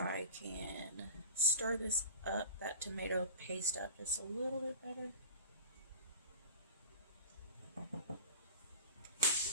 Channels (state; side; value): inverted; both; correlation -0.37